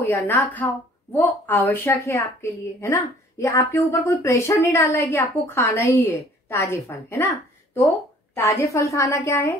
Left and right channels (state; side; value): normal; both; correlation 0.54